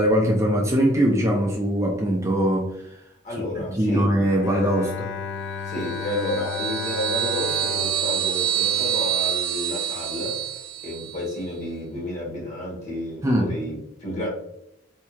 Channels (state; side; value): normal; both; correlation 0.52